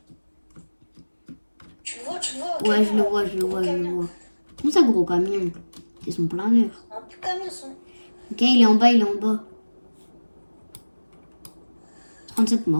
Tu le vois, tu le vois. Ouais, je le vois, je le vois, je le vois. Comment ça, gros camion? C'est son planeur. Un petit camion, son. Ok, il est en bas, il est en bas. 37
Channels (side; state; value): both; inverted; correlation -1.00